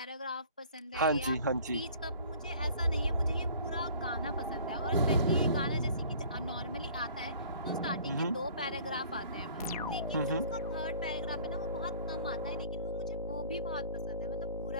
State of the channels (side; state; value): both; inverted; correlation -0.50